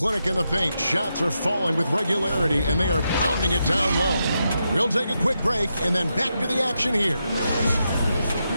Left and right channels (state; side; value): inverted; both; correlation -0.85